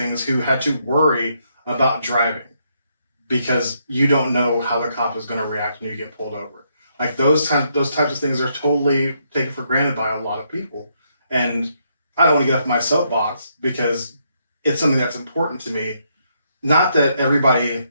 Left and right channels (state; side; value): inverted; both; correlation -0.76